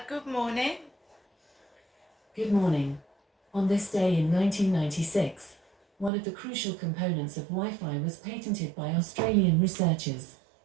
good morning. Good morning. On this day in 1996, one of the crucial components of Wi-Fi was patented by Australian researchers.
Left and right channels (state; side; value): drops out; left; at 6.1 s